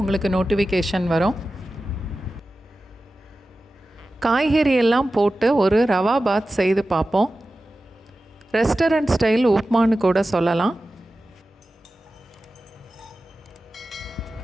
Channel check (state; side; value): normal; both; correlation 0.94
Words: உங்களுக்கு நோட்டிஃபிகேஷன் வரும். காய்கறி எல்லாம் போட்டு ஒரு ரவா பாத் செய்து பார்ப்போம். ரெஸ்டாரண்ட் ஸ்டைல் உப்மான்னு கூட சொல்லலாம்.